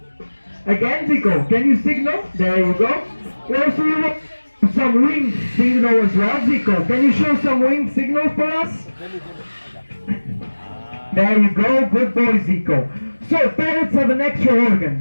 Again, Zico, can you signal? There you go. Also, you want some wing signal as well, Zico. Can you show some wing signal for us? There you go. Good boy, Zico. So parrots have an extra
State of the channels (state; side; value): inverted; both; correlation -1.00